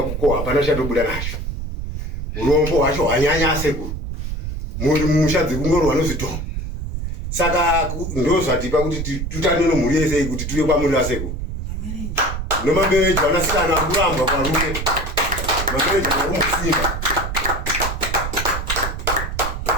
hapana chatobuda nacho. Urombo hwacho hwanyanya sekuru muri mumusha dzekungorwa nezvidhoma. Saka ndo zvatipa kuti tutane nomhuri yese kuti tuye kwamuri asekuru. Nomambereji vanasikana kuramba kwarume mambereji vakumusimba.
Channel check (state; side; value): noise; right; rumble, 5 dB below the sound